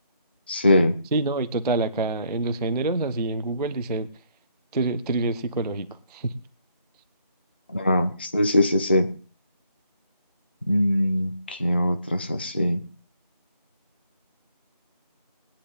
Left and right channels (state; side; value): inverted; both; correlation -0.69